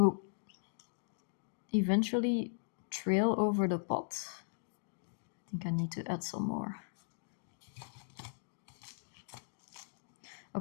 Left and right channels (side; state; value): right; silent; digital silence